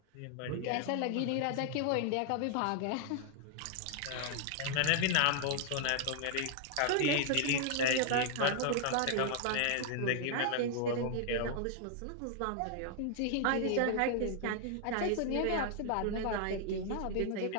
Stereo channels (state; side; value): different; both; correlation 0.00